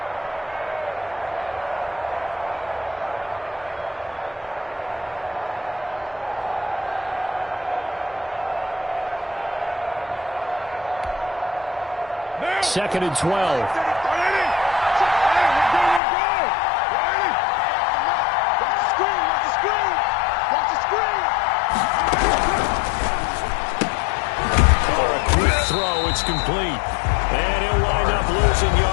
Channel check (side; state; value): right; drops out; at 16.0 s